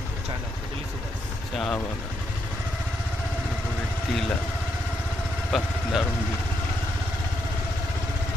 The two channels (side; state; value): both; normal; correlation 0.78